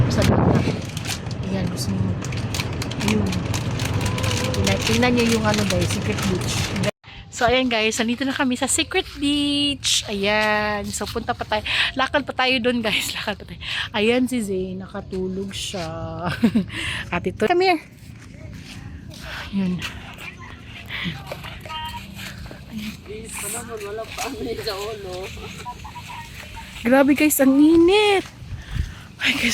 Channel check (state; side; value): identical; both; correlation 1.00